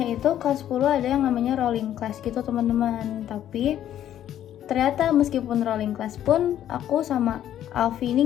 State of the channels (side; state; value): right; quieter; 11.3 dB